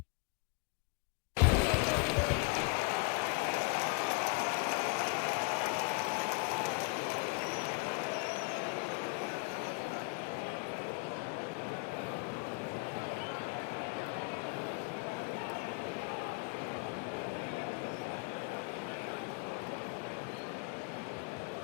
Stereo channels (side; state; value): right; quieter; 33.6 dB